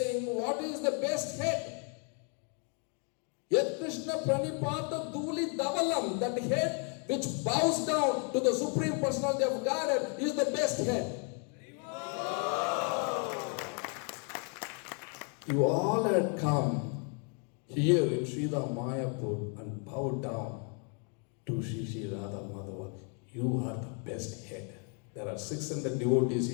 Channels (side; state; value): right; quieter; 39.8 dB